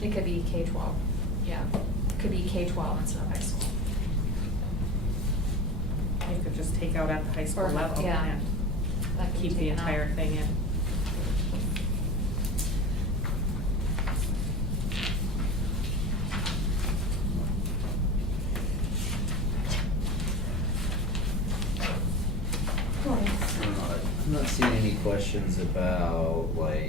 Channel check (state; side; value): normal; both; correlation 0.31